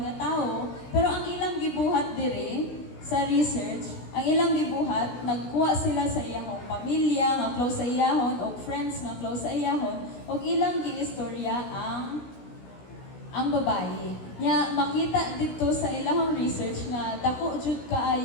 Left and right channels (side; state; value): right; late; 16 ms